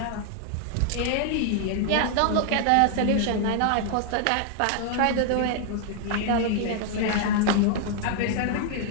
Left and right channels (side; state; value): both; different; correlation 0.00